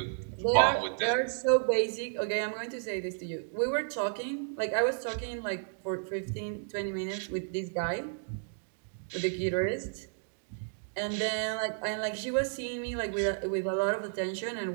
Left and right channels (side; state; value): left; silent; digital silence